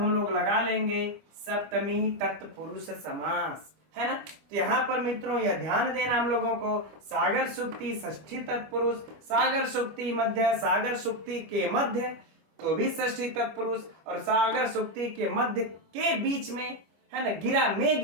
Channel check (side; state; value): left; late; 25 ms